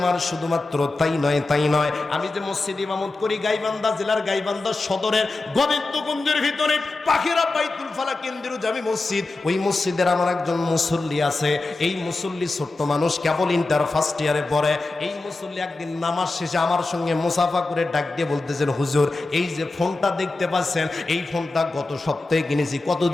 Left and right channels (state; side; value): quieter; right; 3.3 dB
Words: শুধুমাত্র তাই নয়, আমি যে মসজিদ ইমামত করি গাইবান্ধা জেলার গাইবান্ধা সদরের গোবিন্দগঞ্জের ভিতরে পাখিরা বাইতুল ফালা কেন্দ্রীয় জামি মসজিদ, ওই মসজিদের আমার একজন মুসল্লি আছে। এই মুসল্লি ছোট্ট মানুষ, কেবল ইন্টার ফার্স্ট ইয়ারে পড়ে। এই মুসল্লি একদিন নামাজ শেষে আমার সঙ্গে মুসাফা করে ডাক দিয়ে বলতেছেন, হুজুর, এই যে ফোনটা দেখতে পাচ্ছেন, এই ফোনটা গত সপ্তাহে কিনেছি, কত